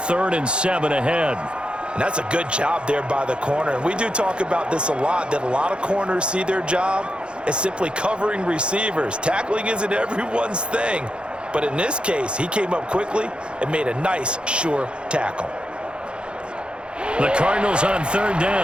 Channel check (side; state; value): left; late; 0.055 ms